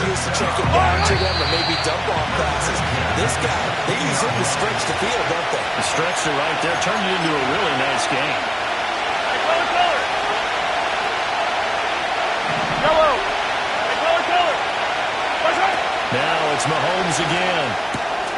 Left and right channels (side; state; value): both; identical; correlation 1.00